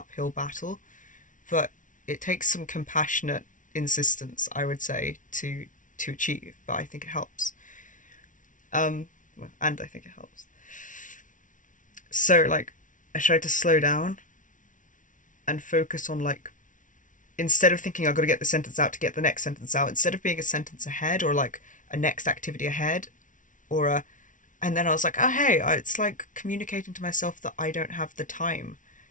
battle, but it takes some compassionate insistence, I would say, to achieve. But I think it helps. Um, and I think it helps. So I tried to slow down and focus on instead of thinking I've got to get the sentence out to get the next sentence out, instead of being a sentence ahead, or like a next activity ahead, or a and then I was like, oh hey, it's like communicating to myself that I don't have the time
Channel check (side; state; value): right; late; 0.38 ms